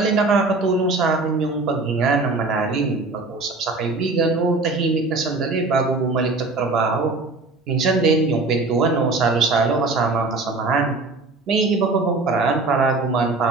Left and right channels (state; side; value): quieter; left; 3.4 dB